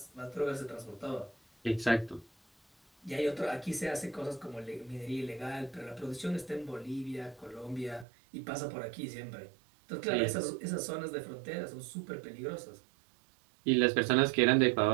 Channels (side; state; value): left; drops out; at 8.1 s